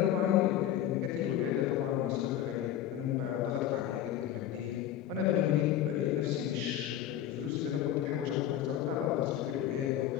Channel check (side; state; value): right; quieter; 11.3 dB